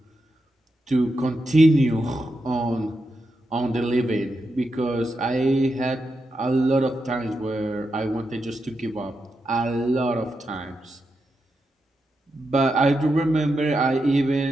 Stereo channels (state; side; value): normal; both; correlation 0.86